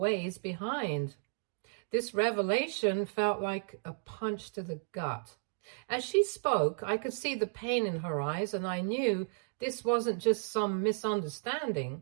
behind. This revelation felt like a punch to the gut. As she spoke, I could see the pain in her eyes, and I knew this wasn't just some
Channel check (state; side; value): silent; left; digital silence